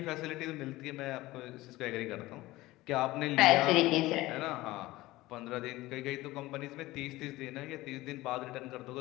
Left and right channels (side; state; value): right; quieter; 18.4 dB